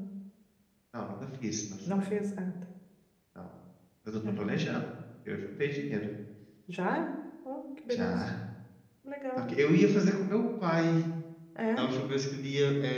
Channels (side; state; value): both; identical; correlation 1.00